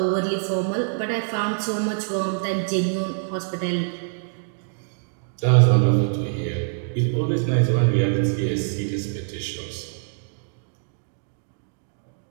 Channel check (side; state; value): left; silent; digital silence